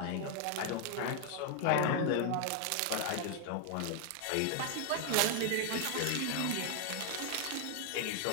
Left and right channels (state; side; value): different; both; correlation 0.00